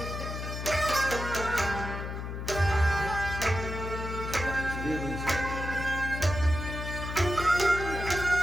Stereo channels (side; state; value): left; noise; hum, 6 dB below the sound